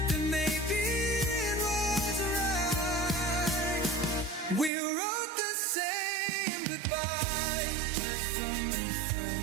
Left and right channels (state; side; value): drops out; left; at 4.7 s